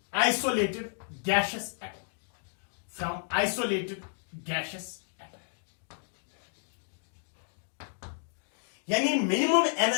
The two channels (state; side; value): silent; right; digital silence